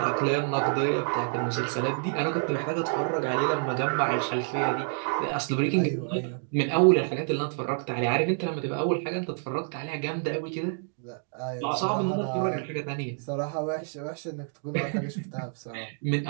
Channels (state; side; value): silent; left; 59 dB below the other